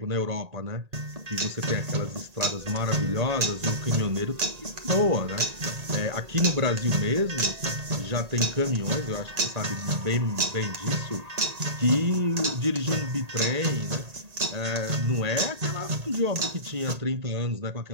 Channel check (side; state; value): left; late; 1.8 ms